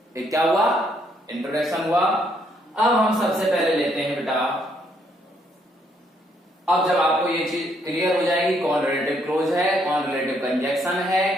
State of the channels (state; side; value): normal; both; correlation 0.71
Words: एक क्या हुआ? इंट्रोडक्शन हुआ। अब हम सबसे पहले लेते हैं बेटा, अब जब आपको ये चीज क्लियर हो जाएगी कौन रिलेटिव क्लोज है, कौन रिलेटिव कंजक्शन है